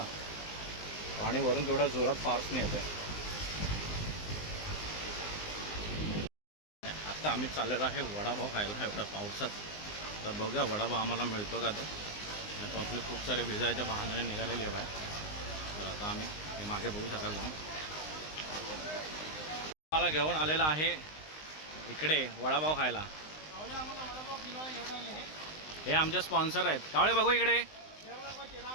पाणी वरून केवढ्या जोरात फार्सने येतं आहे. आता आम्ही चाललेलो आहे वडापाव खायला एवढ्या पावसात. तर बघूया वडापाव आम्हाला मिळतो का. तर आपले खूप सारे भिजायच्या बहाण्याने निघालेले आहे बाहेर. तर आता आम्ही हे मागे बघू शकाल तुम्ही. मला घेऊन आलेला आहे इकडे वडापाव खायला. हे आमचे स्पॉन्सर आहेत. कावळे बघू इकडे.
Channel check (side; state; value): right; late; 19 ms